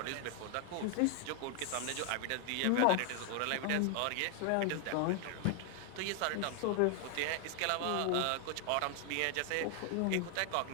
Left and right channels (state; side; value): different; both; correlation 0.00